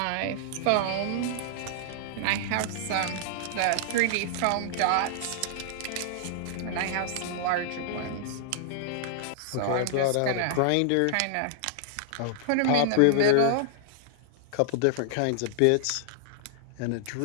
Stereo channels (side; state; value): both; different; correlation -0.01